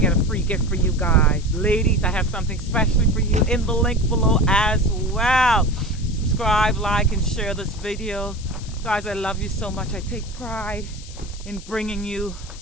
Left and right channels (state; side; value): noise; left; hiss, 18 dB below the sound